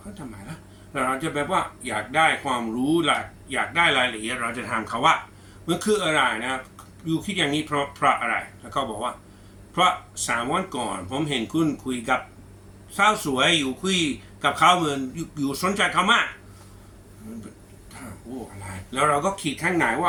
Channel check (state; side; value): identical; both; correlation 1.00